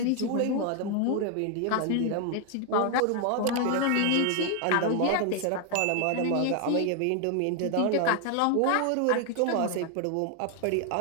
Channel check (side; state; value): both; different; correlation 0.00